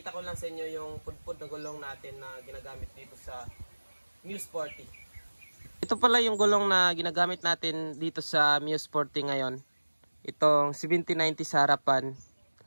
ko lang sa inyo yung pudpud na gulong natin na ginagamit dito sa Mio Sporty. Ito pala yung gulong na ginagamit natin dito sa Mio Sporty ngayon. Itong 7090 sa harapan,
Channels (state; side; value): inverted; both; correlation -1.00